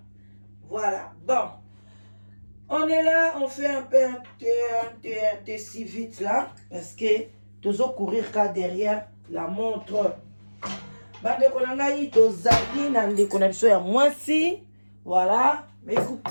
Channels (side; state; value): both; inverted; correlation -1.00